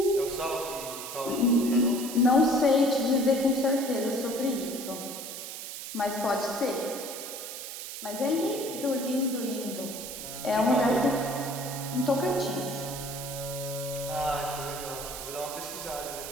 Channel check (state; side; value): noise; right; hiss, 8 dB below the sound